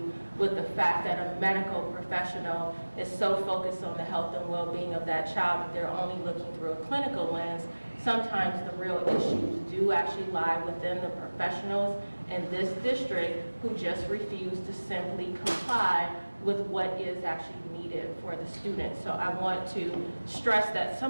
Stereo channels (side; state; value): both; inverted; correlation -1.00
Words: with the fact that a medical professional is so focused on the health and well-being of that child that they're only looking through a clinical lens. Sometimes the real issues do actually lie within the professionals in this district who just refuse to simply comply with what is actually needed for the students. So I want to stress that